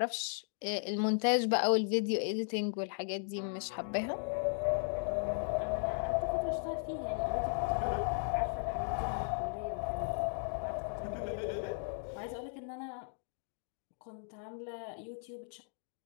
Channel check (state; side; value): silent; right; digital silence